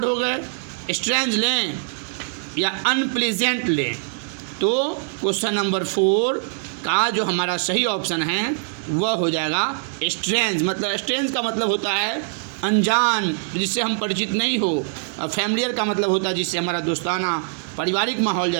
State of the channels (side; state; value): left; silent; 64 dB below the other